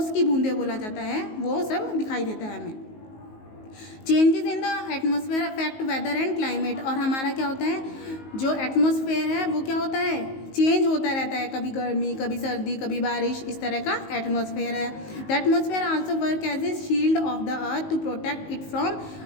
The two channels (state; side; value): late; right; 19 ms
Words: की बूंदें बोला जाता है, वो सब दिखाई देता है हमें। Changes in the atmosphere affect weather and climate, और हमारा क्या होता है, जो एटमॉस्फेयर है वो क्या होता है, चेंज होता रहता है, कभी गर्मी, कभी सर्दी, कभी बारिश, इस तरह का एटमॉस्फेयर है। The atmosphere also work as a shield of the earth to protect it from,